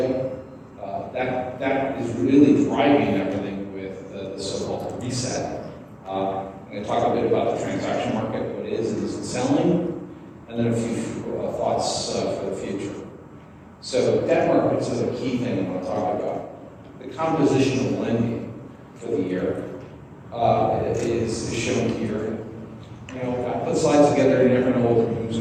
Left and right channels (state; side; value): identical; both; correlation 1.00